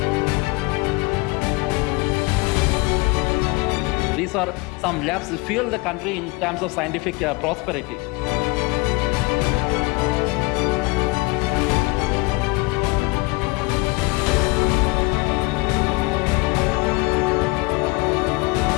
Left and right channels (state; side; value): quieter; right; 25.2 dB